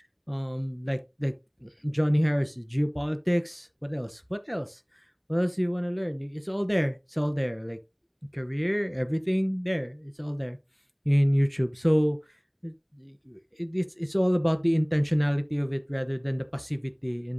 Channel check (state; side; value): identical; both; correlation 1.00